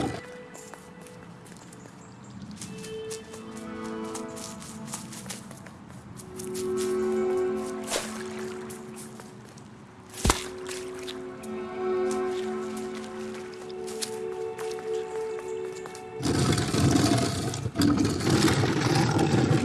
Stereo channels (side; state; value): both; identical; correlation 1.00